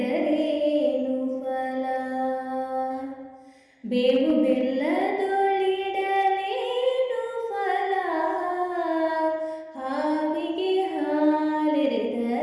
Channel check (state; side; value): identical; both; correlation 1.00